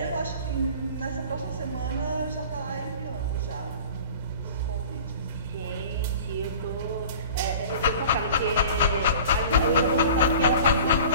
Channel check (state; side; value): inverted; both; correlation -0.42